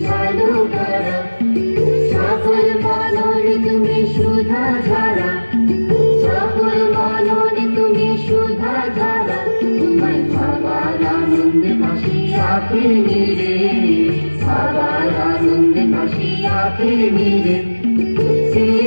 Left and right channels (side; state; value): both; inverted; correlation -1.00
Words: আলো করা, সকল মননে তুমি সুধা ধারা, সকল মননে তুমি সুধা ধারা। তোমায় ভাবার আনন্দে ভাসি আঁখি নিরে, ভাবার আনন্দে ভাসি আঁখি নিরে। কে